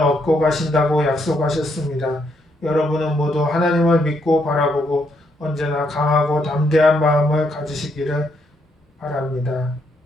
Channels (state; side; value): normal; both; correlation 0.75